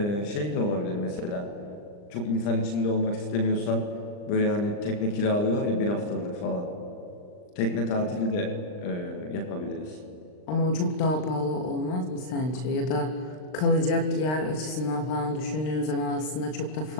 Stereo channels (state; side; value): late; right; 39 ms